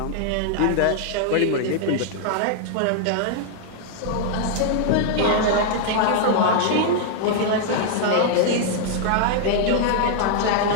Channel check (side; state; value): both; different; correlation -0.01